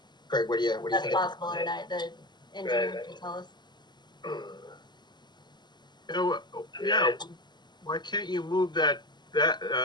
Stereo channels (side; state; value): right; late; 0.21 ms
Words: Craig, what do you That's think? possible or not? The engineer Right. can tell us. You know, yeah. Why can't you move that